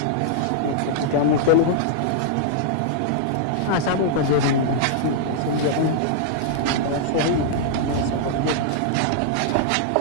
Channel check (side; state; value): both; different; correlation -0.01